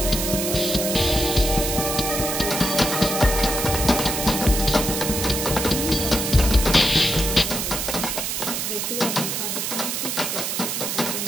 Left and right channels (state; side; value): noise; right; hiss, 2 dB below the sound